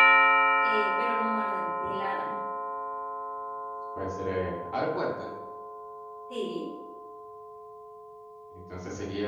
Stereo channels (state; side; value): identical; both; correlation 1.00